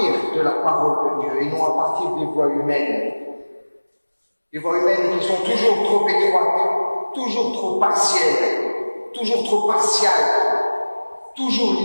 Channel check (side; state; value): both; inverted; correlation -1.00